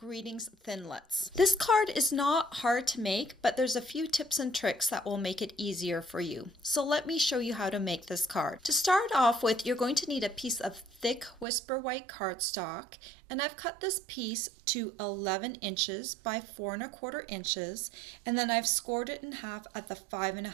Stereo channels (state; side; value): drops out; left; at 11.5 s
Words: Thinlits. This card is not hard to make, but there's a few tips and tricks that will make it easier for you. So let me show you how to make this card. To start off with, you're going to need a piece of thick Whisper White cardstock, and I've cut this piece to 11 inches by 4 1/4 inches, and then I've scored it in half at the 5